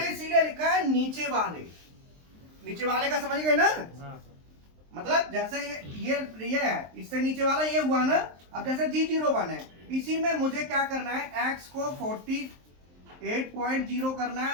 इसीलिए लिखा है नीचे वाले का, समझ गए ना। मतलब जैसे ये है, इससे नीचे वाला ये हुआ ना। अब जैसे G01 है, इसी में मुझे क्या करना है, x को 48.0 करना है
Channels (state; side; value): late; left; 23 ms